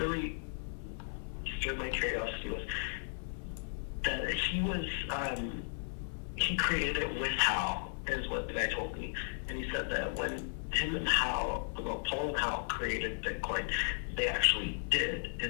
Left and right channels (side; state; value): right; silent; 54 dB below the other